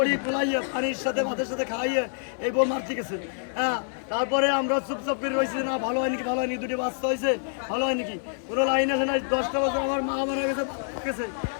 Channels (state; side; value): silent; right; digital silence